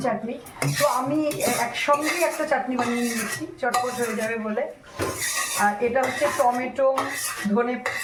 চাটনি। তো আমি একসঙ্গেই একটা চাটনি বানিয়ে নিয়েছি, চটপট হয়ে যাবে বলে। আর এটা হচ্ছে টমেটো, ধনে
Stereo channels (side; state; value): both; identical; correlation 1.00